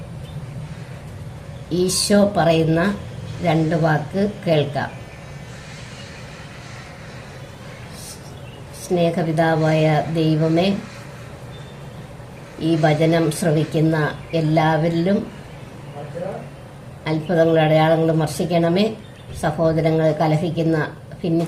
ഈശോ പറയുന്ന 2 വാക്ക് കേൾക്കാം. സ്നേഹപിതാവായ ദൈവമേ, ഈ വചനം ശ്രവിക്കുന്ന എല്ലാവരിലും അത്ഭുതങ്ങളും അടയാളങ്ങളും വർഷിക്കണമേ. സഹോദരങ്ങളെ കലഹിക്കുന്ന,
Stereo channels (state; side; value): identical; both; correlation 1.00